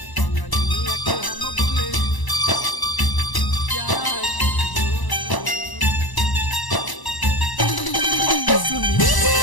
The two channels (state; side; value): late; right; 1.0 ms